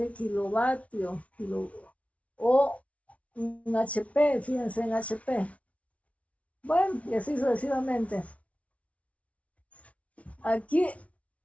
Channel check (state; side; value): late; right; 0.065 ms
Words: kilovatios, o un HP, fíjense en HP. Bueno, y así sucesivamente. Aquí